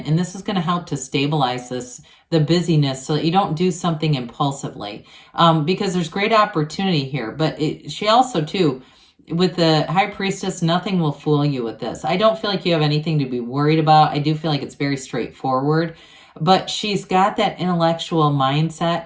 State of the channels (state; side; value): identical; both; correlation 1.00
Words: and this is going to help to stabilize the busyness so that you don't do something impulsively, because there's great opportunity here. But she also, too, with the High Priestess, nothing will fool you with this. I don't feel like you have anything to be worried about. I do feel like it's very straightforward. But she's got that intellectual mindset